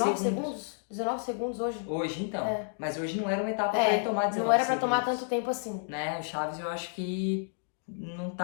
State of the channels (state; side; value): silent; right; digital silence